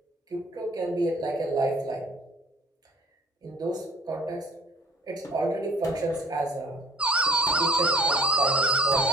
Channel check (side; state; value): both; normal; correlation 0.56